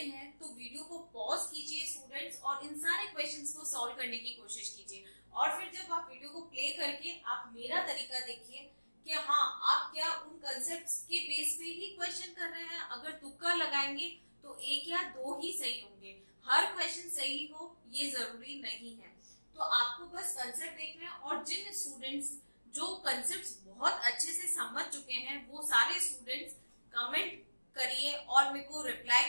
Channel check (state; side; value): inverted; both; correlation -1.00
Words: तो वीडियो को पॉज कीजिए स्टूडेंट्स और इन सारे क्वेश्चंस को सॉल्व करने की कोशिश कीजिए। और फिर जब आप वीडियो को प्ले करके आप मेरा तरीका देखिए कि हाँ आप क्या उन कंसेप्ट्स के बेस पे ही क्वेश्चन कर रहे हैं। अगर तुक्का लगाएंगे तो एक या दो ही सही होंगे, हर क्वेश्चन सही हो ये जरूरी नहीं है। तो आपको बस कंसेप्ट देखना है और जिन स्टूडेंट्स जो कंसेप्ट्स बहुत अच्छे से समझ चुके हैं वो सारे स्टूडेंट्स कमेंट करिए और मेरे को रिप्लाई